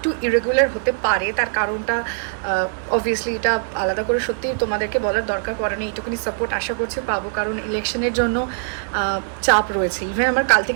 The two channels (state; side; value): silent; left; 65 dB below the other